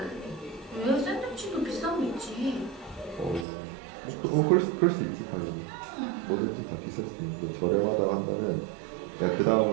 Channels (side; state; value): left; drops out; at 3.5 s